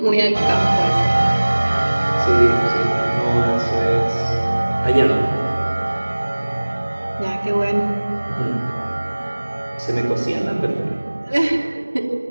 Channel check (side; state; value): both; inverted; correlation -1.00